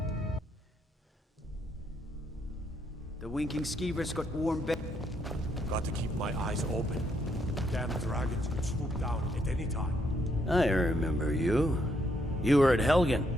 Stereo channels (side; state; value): both; normal; correlation 0.74